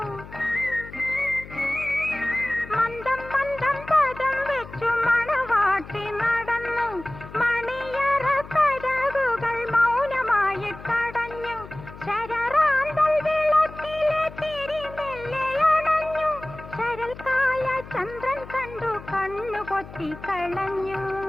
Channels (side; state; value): left; noise; hum, 16 dB below the sound